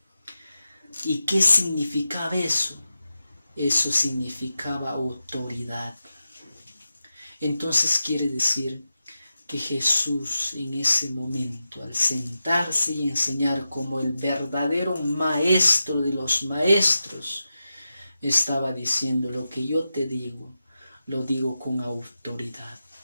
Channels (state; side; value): inverted; both; correlation -0.91